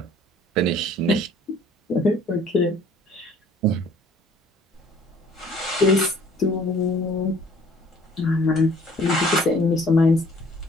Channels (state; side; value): normal; both; correlation 0.55